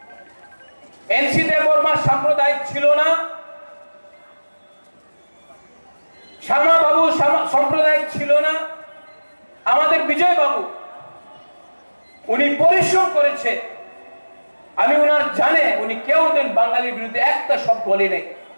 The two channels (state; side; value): inverted; both; correlation -1.00